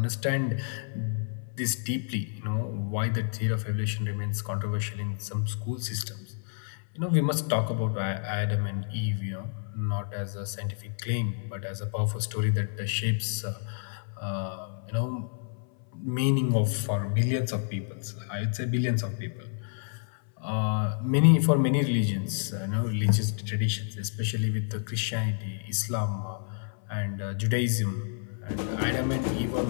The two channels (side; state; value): right; silent; 58 dB below the other